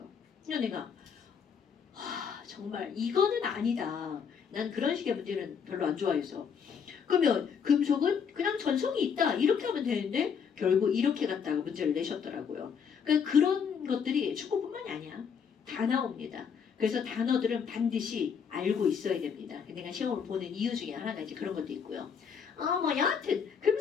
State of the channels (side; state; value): right; quieter; 6.8 dB